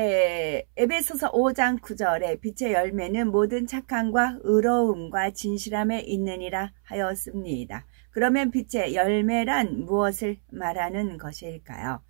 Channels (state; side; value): silent; left; 61 dB below the other